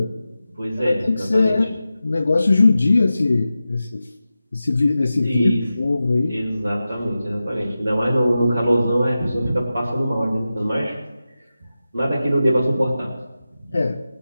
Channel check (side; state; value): both; inverted; correlation -0.93